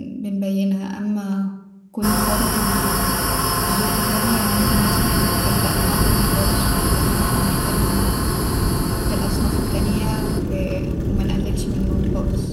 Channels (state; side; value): identical; both; correlation 1.00